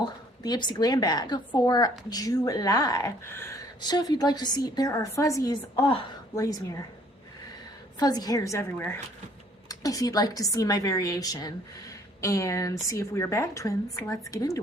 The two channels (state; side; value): normal; both; correlation 0.60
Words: the Ipsy Glam Bag for July. So if you'd like to see, there are fuzzies, oh, blaze mirror, fuzzy hairs everywhere. If you'd like to see my variation and see if we are bag twins, let's get